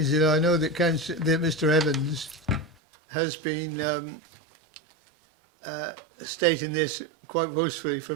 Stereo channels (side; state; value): left; drops out; at 2.8 s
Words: that I know that Mr. Evans has been stating this quite boastfully for